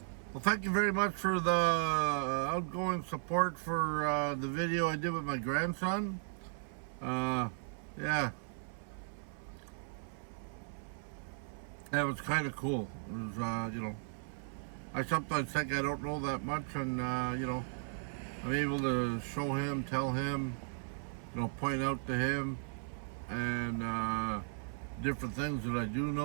Well, thank you very much for the outgoing support for the video I did with my grandson. Yeah. That was kind of cool. It was, I sometimes think I don't know that much, and, I'm able to show him, tell him, point out to him, and different things that I do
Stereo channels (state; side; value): silent; left; 54 dB below the other